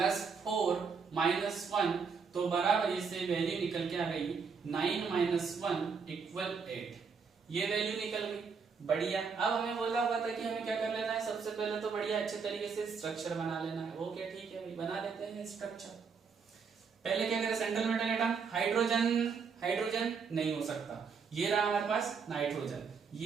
4 - 1, तो बराबर से वैल्यू निकल के आ गई 9 - 1 = 8, ये वैल्यू निकल गई, बढ़िया। अब हमें बोला हुआ था कि हमें क्या कर लेना है, सबसे पहले तो बढ़िया अच्छे तरीके से स्ट्रक्चर बना लेना है। वो क्या, ठीक है भाई बना लेते हैं स्ट्रक्चर। पहले क्या करें, सेंट्रल मेटल एटम, हाइड्रोजन नहीं हो सकता, ये रहा हमारे पास नाइट्रोजन,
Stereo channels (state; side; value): quieter; left; 5.6 dB